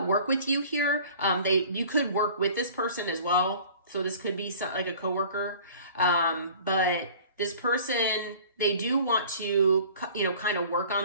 work with you here. You could work with this person as well. So this could be like a coworker. But this person, they do want to, you know, kind of work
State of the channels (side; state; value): both; inverted; correlation -0.46